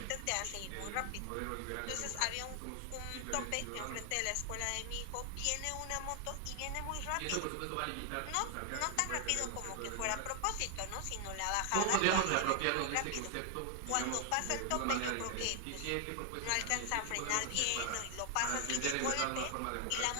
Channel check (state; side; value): different; both; correlation 0.00